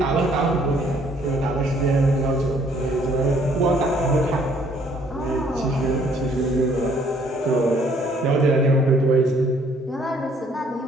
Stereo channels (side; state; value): both; normal; correlation 0.63